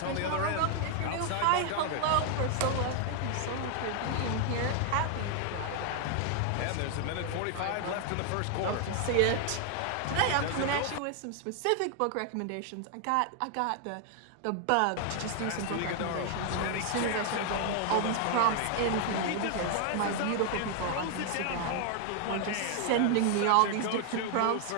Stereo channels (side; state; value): both; different; correlation 0.00